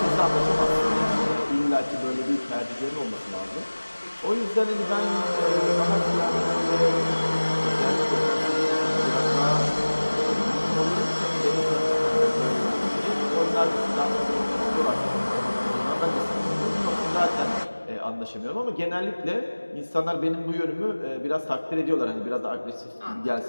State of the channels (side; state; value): both; inverted; correlation -1.00